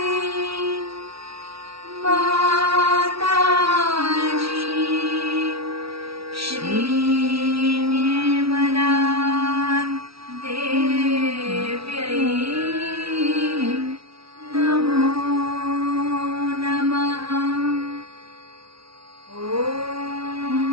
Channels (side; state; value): left; late; 0.76 ms